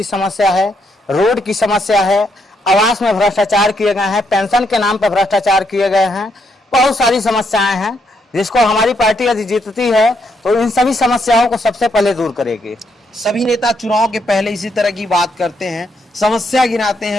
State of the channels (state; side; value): normal; both; correlation 0.76